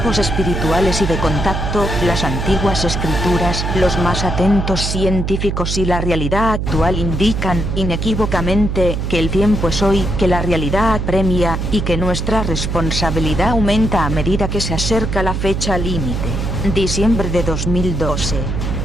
espirituales y de contacto, las antiguas escrituras, los más atentos científicos y la realidad actual indican, inequívocamente, que el tiempo es hoy, que la realidad apremia, y que nuestra responsabilidad aumenta a medida que se acerca la fecha límite. Diciembre de 2012.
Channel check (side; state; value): right; noise; hum, 2 dB below the sound